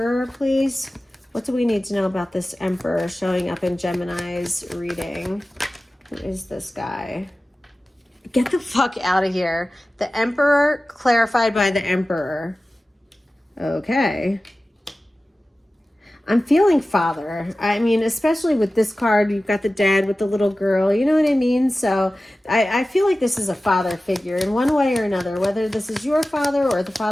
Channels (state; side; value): normal; both; correlation 0.96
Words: please. What do we need to know about this Emperor showing up in Gemini's reading? Who is this guy? Get the fuck out of here. The Emperor clarified by the Emperor. Okay. I'm feeling father. I mean, especially with this card, you've got the dad with the little girl, you know what I mean? So I feel like this is a father figure in one way or another, whether this is your father or the